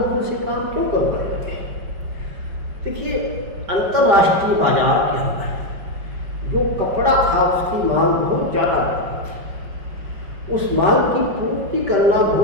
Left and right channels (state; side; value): late; left; 5.2 ms